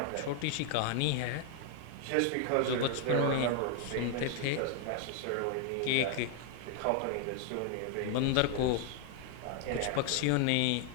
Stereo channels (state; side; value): different; both; correlation 0.00